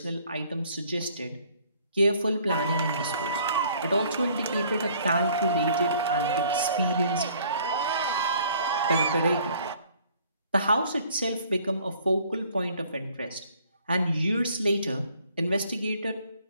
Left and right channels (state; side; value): inverted; both; correlation -0.58